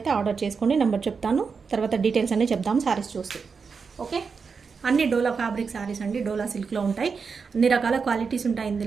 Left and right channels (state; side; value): quieter; left; 5.4 dB